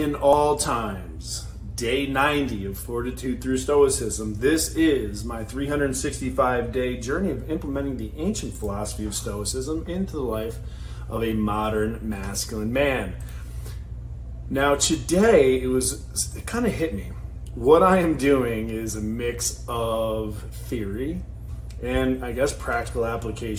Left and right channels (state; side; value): identical; both; correlation 1.00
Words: all times. Day 90 of Fortitude Through Stoicism. This is my 365-day journey of implementing the ancient philosophy of Stoicism into the life of a modern masculine man. Now today, it kind of hit me. What I am doing is a mix of theory and I guess practical